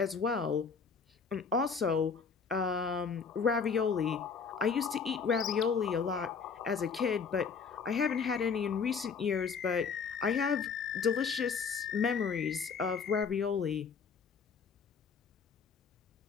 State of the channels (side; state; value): right; quieter; 5.8 dB